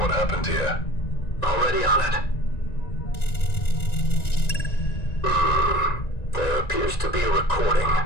happened here. Already on it. There appears to be a recording.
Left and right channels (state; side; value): late; right; 1.9 ms